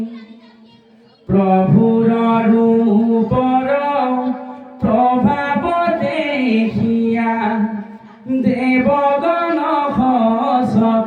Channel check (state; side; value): identical; both; correlation 1.00